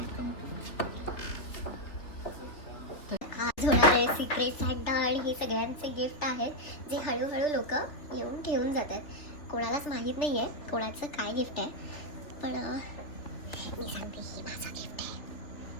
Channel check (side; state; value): right; late; 3.3 ms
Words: आज होणारे secret Santa आणि हे सगळ्यांचे gift आहेत जे हळूहळू लोक येऊन ठेवून जातात. कोणालाच माहीत नाही आहे कोणाचं काय गिफ्ट आहे, पण मी सांगते ही माझं गिफ्ट आहे.